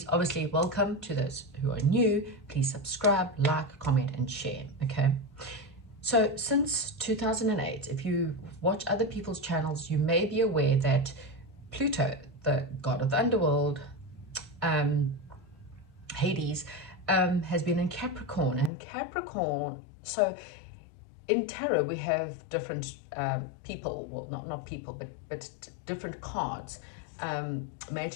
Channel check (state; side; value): drops out; right; at 18.7 s